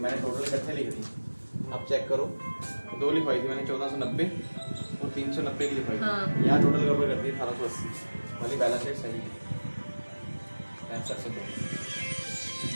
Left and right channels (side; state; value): both; inverted; correlation -1.00